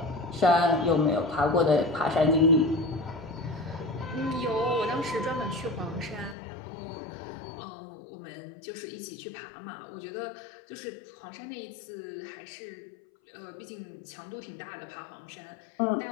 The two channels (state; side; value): drops out; right; at 6.4 s